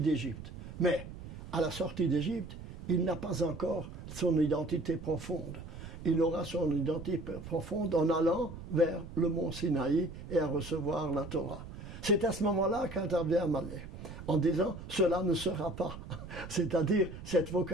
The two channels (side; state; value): right; noise; rumble, 12 dB below the sound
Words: mais à la sortie d'Égypte, il n'a pas encore son identité profonde. Il aura son identité profonde en allant vers le mont Sinaï et à recevoir la Torah. C'est à ce moment-là qu'intervient Amalek, en disant « cela ne sera pas ». C'est-à-dire cette